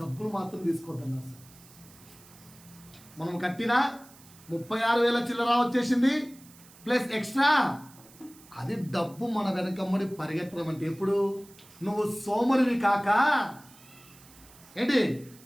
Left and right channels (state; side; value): noise; right; hiss, 23 dB below the sound